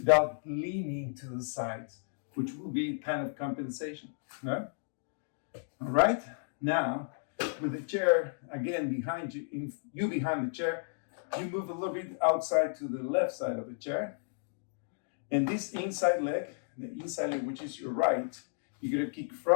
leaning to the sides, which will be kind of compensation. No? All right, now with the chair again behind you, behind the chair, you move a little bit outside to the left side of the chair. And this inside leg, which is your right, you're gonna kick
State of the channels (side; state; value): right; silent; digital silence